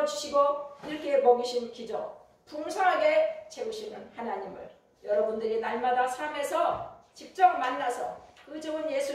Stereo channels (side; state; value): both; identical; correlation 1.00